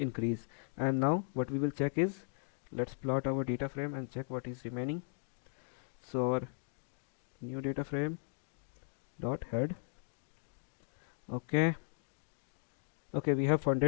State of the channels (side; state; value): right; silent; digital silence